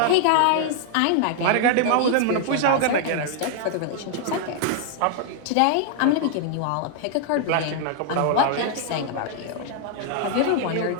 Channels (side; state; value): both; different; correlation 0.00